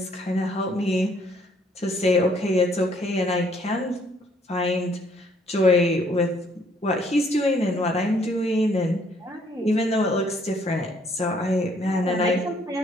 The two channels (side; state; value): both; normal; correlation 0.65